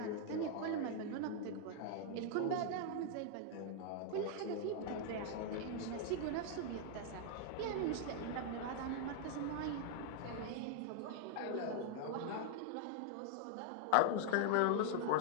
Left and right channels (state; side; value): different; both; correlation 0.00